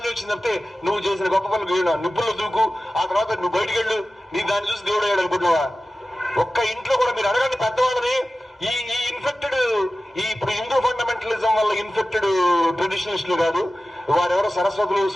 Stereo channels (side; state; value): both; normal; correlation 0.95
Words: వచ్చింది తప్పితే నువ్వు చేసిన గొప్ప పనులు నిప్పుల్లో దూకు, ఆ తర్వాత నువ్వు బయటికి వెళ్ళు, నీ దాన్ని చూసి దేవుడు అయ్యాడు అనుకుంటున్నావా? ఒక్క ఇంట్లో కూడా మీరు అడగండి పెద్దవాళ్ళని, ఈ ఇన్ఫెక్టెడ్ ఇప్పుడు హిందూ ఫండమెంటలిజం వల్ల ఇన్ఫెక్టెడ్ ట్రెడిషనలిస్టులు కాదు, వారెవరో సరస్వతులు